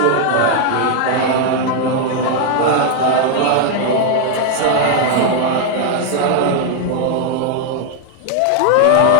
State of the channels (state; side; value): different; both; correlation 0.00